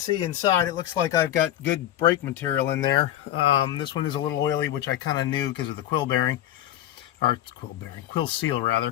inside, it looks like I've got good brake material in there. This one is a little oily, which I kind of knew because of the quill bearing, or quill seal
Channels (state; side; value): quieter; right; 12.6 dB